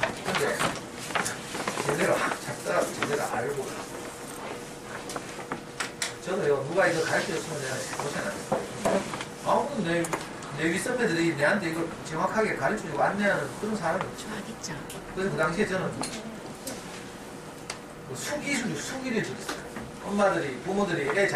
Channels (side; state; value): both; identical; correlation 1.00